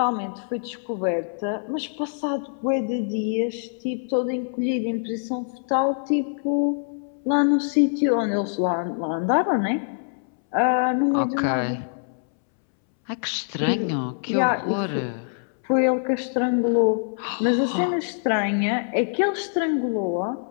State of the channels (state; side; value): silent; right; 62 dB below the other